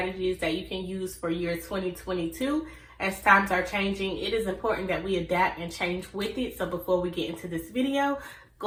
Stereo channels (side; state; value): both; identical; correlation 1.00